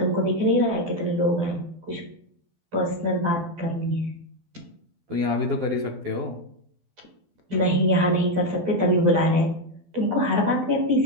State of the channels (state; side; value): late; left; 12 ms